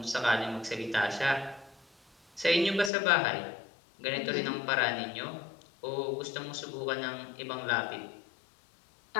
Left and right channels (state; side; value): drops out; right; at 2.9 s